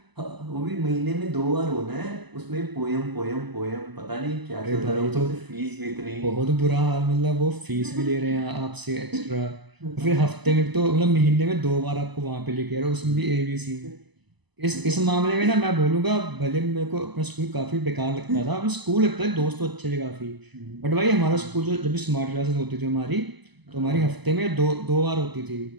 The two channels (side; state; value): left; late; 1.0 ms